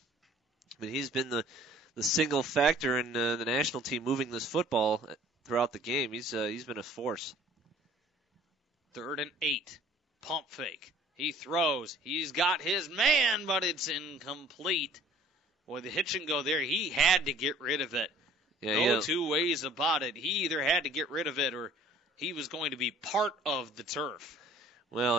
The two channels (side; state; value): both; normal; correlation 0.53